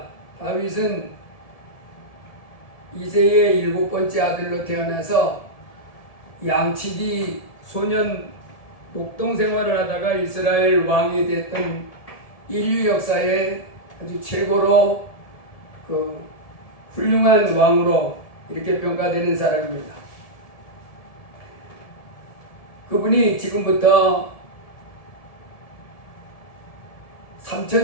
다윗은 이새의 7번째 아들로 태어나서 양치기 소년 목동 생활을 하다가 이스라엘 왕이 됐던 인류 역사에 아주 최고로 훌륭한 왕으로 이렇게 평가되는 사람입니다. 그분이 지금부터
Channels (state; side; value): late; right; 1.7 ms